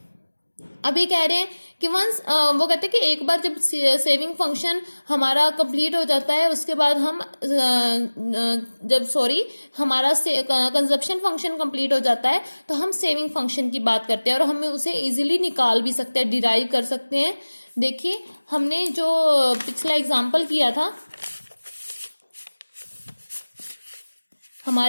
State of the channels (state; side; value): inverted; both; correlation -1.00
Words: अभी कह रहे हैं कि वंस वो कहते हैं कि एक बार जब सेविंग फंक्शन हमारा कंप्लीट हो जाता है, उसके बाद हम हमारा कंजप्शन फंक्शन कंप्लीट हो जाता है, तो हम सेविंग फंक्शन की बात करते हैं, और हम उसे इजीली निकाल भी सकते हैं, डिराइव कर सकते हैं। देखिए हमने जो पिछला एग्जाम्पल किया था,